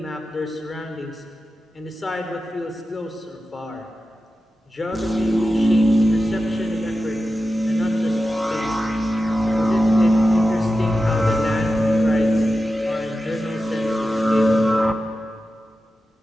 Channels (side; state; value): both; normal; correlation 0.92